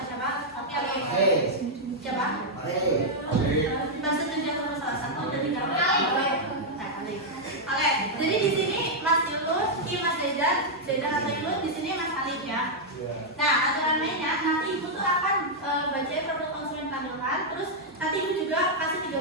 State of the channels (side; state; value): both; normal; correlation -0.04